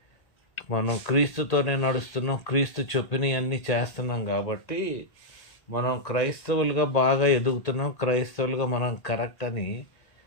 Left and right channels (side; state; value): right; late; 1.8 ms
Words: మనం క్రీస్తుతోనే నడుస్తున్నాం, క్రీస్తు చెప్పినవన్నీ చేస్తున్నాం కాబట్టి మనం క్రైస్తవులుగా బాగా ఎదుగుతున్నాం, క్రైస్తవులుగా మనం కరెక్ట్ అని